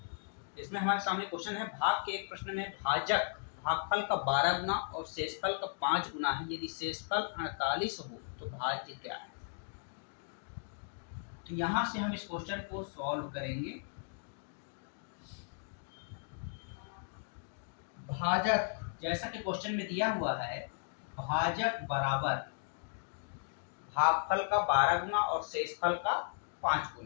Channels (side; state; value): right; silent; digital silence